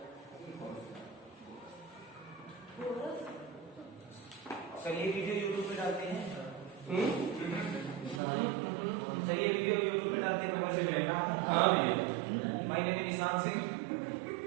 सर ये वीडियो यूट्यूब पे डालते हैं। सर ये वीडियो यूट्यूब पे डालते हैं। हाँ भैया, माय नेम इज निशान सिंह।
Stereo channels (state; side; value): drops out; left; at 8.2 s